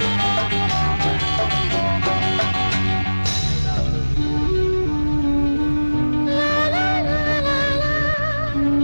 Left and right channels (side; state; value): both; inverted; correlation -1.00